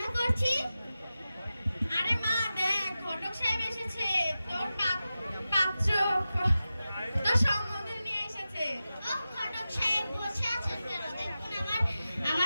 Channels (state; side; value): inverted; both; correlation -0.94